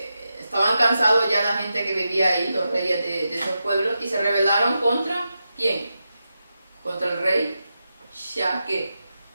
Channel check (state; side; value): inverted; both; correlation -0.89